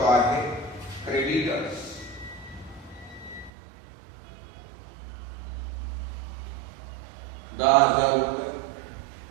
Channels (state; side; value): drops out; left; at 3.5 s